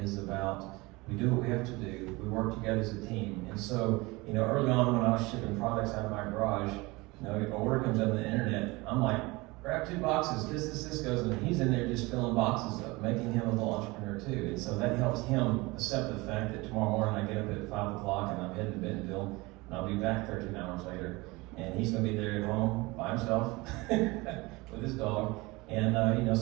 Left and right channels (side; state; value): left; quieter; 23.2 dB